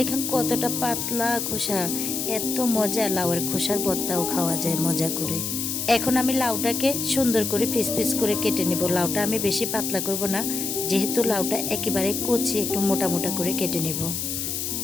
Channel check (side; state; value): left; noise; hiss, 3 dB below the sound